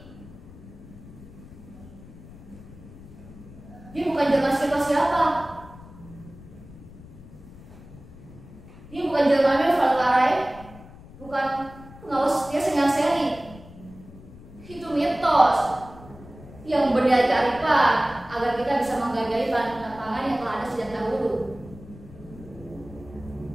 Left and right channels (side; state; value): left; noise; rumble, 18 dB below the sound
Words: Dia bukan jelmaan siapa-siapa. Dia bukan jelmaan Valkarai, bukan pengawas setia Sengal Seri. Itu mitos yang berdalih kearifan agar kita bisa menghargai bahan pangan yang telah ada sejak dahulu.